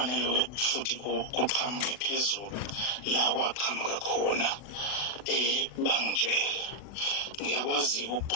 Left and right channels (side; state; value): right; late; 40 ms